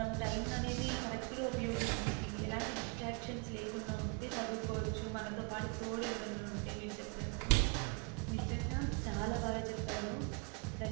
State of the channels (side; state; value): left; quieter; 33.5 dB